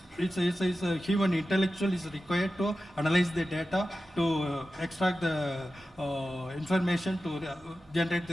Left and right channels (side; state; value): both; normal; correlation 0.93